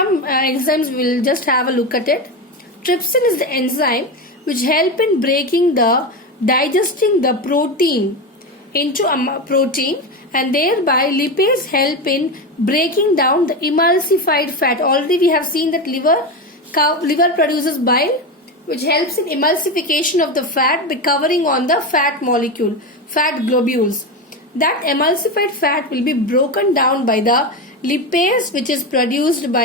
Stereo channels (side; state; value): both; normal; correlation 0.18